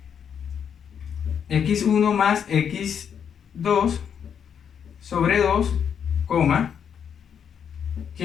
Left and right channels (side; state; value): right; quieter; 7.8 dB